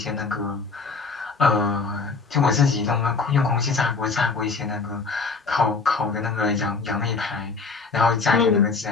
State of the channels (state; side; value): quieter; right; 4.4 dB